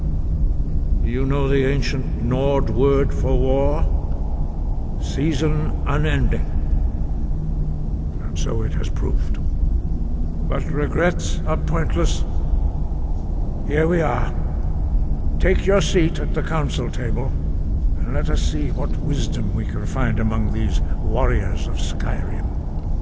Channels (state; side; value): identical; both; correlation 1.00